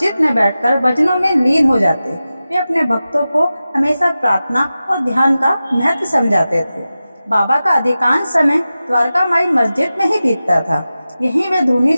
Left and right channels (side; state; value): both; inverted; correlation -0.94